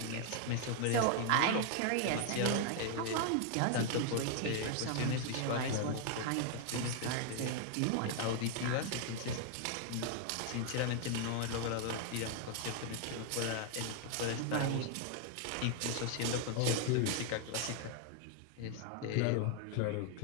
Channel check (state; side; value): different; both; correlation 0.00